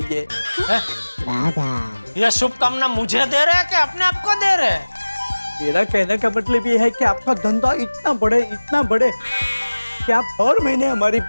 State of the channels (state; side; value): inverted; both; correlation -1.00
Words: यह शुभकामना मुझे दे रहे हैं कि अपने आप को दे रहे हैं? मेरा कहने का मतलब ये है कि आपका धंधा इतना बढ़े कि आप हर महीने हमारी